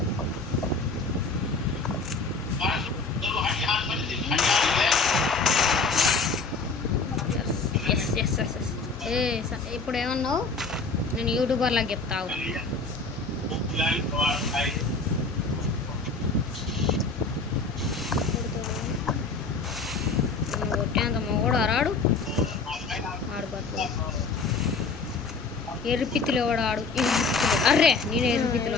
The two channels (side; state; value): right; quieter; 4.1 dB